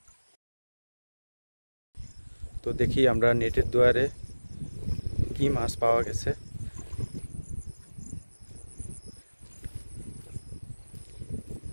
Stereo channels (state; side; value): inverted; both; correlation -1.00